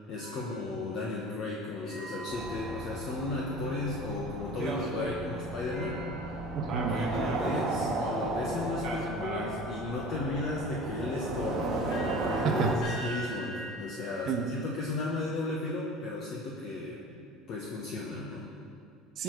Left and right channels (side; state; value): both; normal; correlation 0.39